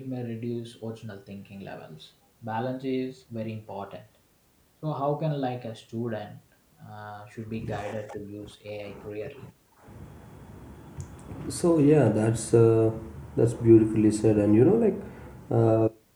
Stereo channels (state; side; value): identical; both; correlation 1.00